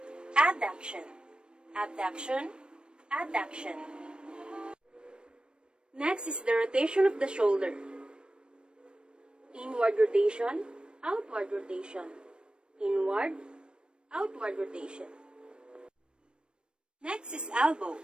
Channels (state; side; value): late; left; 0.053 ms